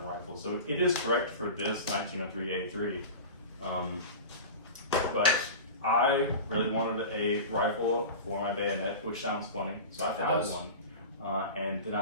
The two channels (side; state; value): both; inverted; correlation -0.31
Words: rifle. So it is correct for this 1903 A3. But I really wanted a rifle for my bayonet, which sounds funny. So I found one. And then